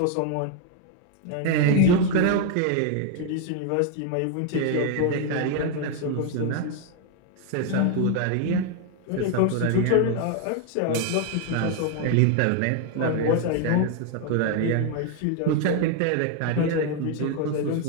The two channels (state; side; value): different; both; correlation 0.01